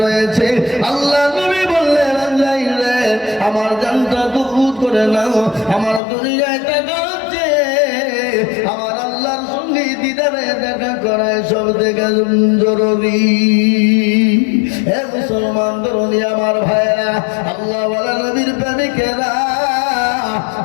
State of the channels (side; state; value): right; drops out; at 6.0 s